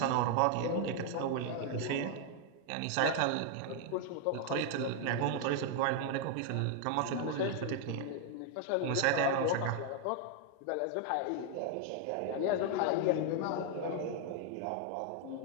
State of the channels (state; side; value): different; both; correlation 0.00